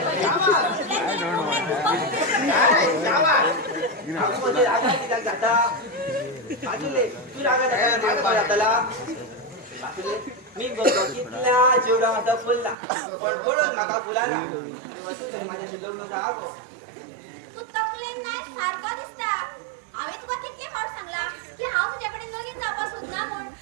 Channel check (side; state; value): left; drops out; at 12.8 s